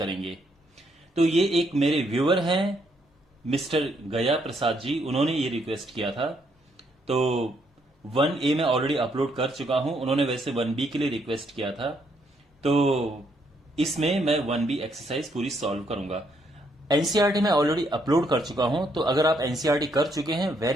तो ये एक मेरे व्यूअर हैं मिस्टर गया प्रसाद जी, उन्होंने ये रिक्वेस्ट किया था। तो 1A में ऑलरेडी अपलोड कर चुका हूं, उन्होंने वैसे 1B के लिए रिक्वेस्ट किया था। तो इसमें मैं 1B एक्सरसाइज पूरी सॉल्व करूंगा। एनसीईआरटी में ऑलरेडी अपलोड कर चुका हूं, तो अगर आप एनसीईआरटी कर चुके हैं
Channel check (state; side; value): normal; both; correlation 0.73